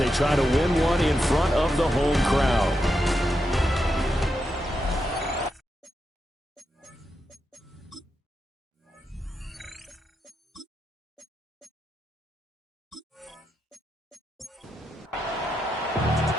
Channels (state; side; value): normal; both; correlation 0.85